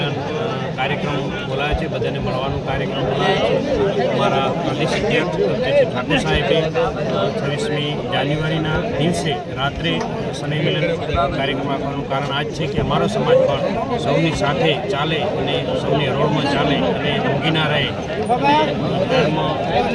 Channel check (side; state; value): both; identical; correlation 1.00